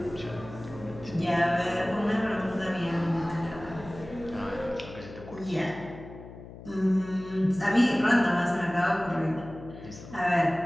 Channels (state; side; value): noise; left; hum, 15 dB below the sound